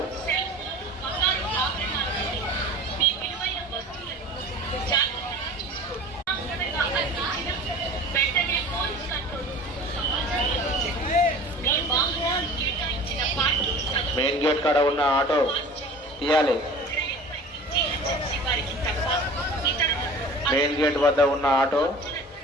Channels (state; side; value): normal; both; correlation 0.41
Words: మెయిన్ గేట్ కాడ ఉన్న ఆటో తీయాలి. మెయిన్ గేట్ వద్ద ఉన్న ఆటో